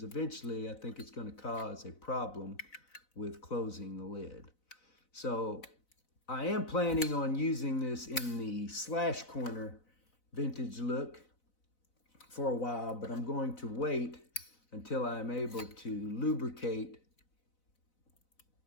eventually I think it's going to cause a problem with closing the lid. So I am planning on using this in the slash corner vintage look for a while, but I'm going to wait until I'm able to lubricate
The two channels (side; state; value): right; late; 4.0 ms